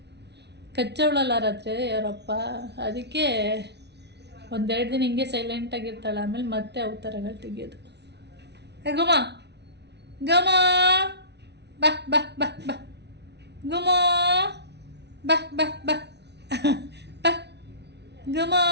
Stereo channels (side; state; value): left; late; 0.50 ms